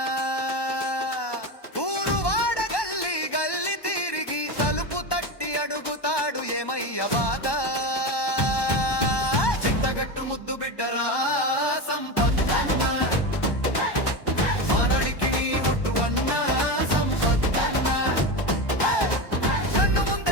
ఊరు వాడ గల్లి గల్లి తిరిగి తలుపు తట్టి అడుగుతాడు ఏమయ్య బాధ. చింతగట్టు ముద్దు బిడ్డరా సంపత్తన్న, మానడికి నీ ఒట్టు అన్న సంపత్తన్న. కన్ను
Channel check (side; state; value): right; late; 1.1 ms